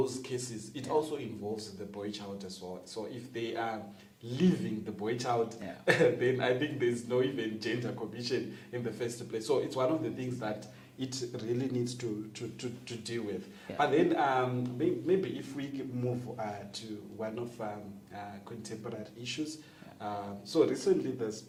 cases, it also involves the boy child as well. So if they are leaving the boy child, then I think there's no even gender commission in the first place. So it's one of the things that it really needs to deal with. Yeah. But then maybe if we move to one of contemporary issues. So recently there's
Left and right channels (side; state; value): both; identical; correlation 1.00